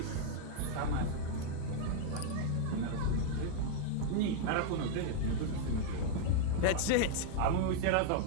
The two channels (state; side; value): different; both; correlation -0.01